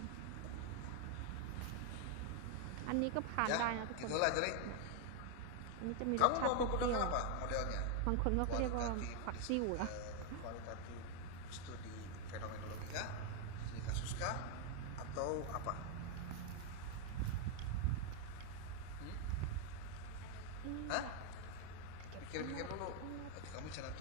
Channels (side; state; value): both; different; correlation 0.00